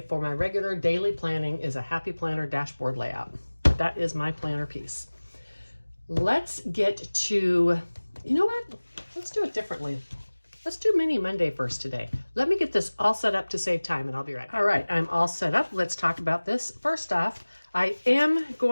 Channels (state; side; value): inverted; both; correlation -1.00